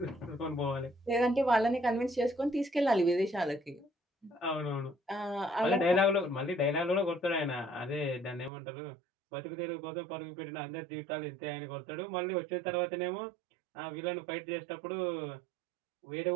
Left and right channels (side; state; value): left; drops out; at 8.5 s